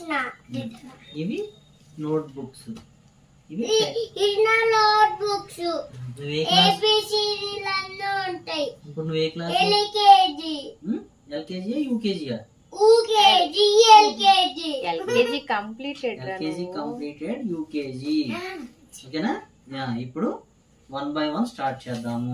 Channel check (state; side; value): identical; both; correlation 1.00